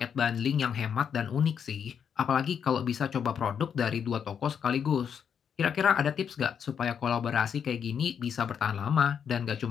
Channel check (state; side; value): quieter; right; 7.6 dB